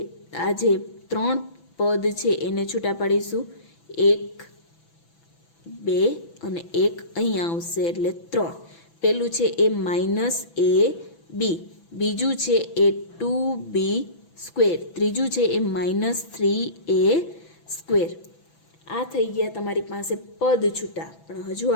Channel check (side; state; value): right; late; 6.0 ms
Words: 3 પદ છે એને છૂટા પાડીશું. 1 2 અને 1 અહીંયા આવશે એટલે 3. પહેલું છે એ -ab, બીજું છે એ 2b સ્ક્વેર, ત્રીજું છે એ -3a સ્ક્વેર. આ થઈ ગયા તમારી પાસે પદ છૂટા, પણ હજુ